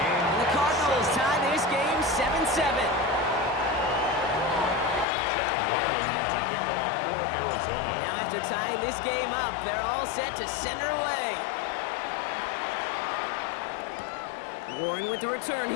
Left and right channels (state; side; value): drops out; right; at 5.1 s